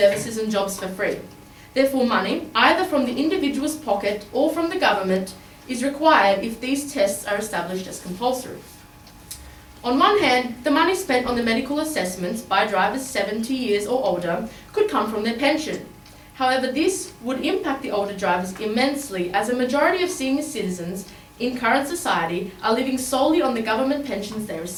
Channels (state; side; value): identical; both; correlation 1.00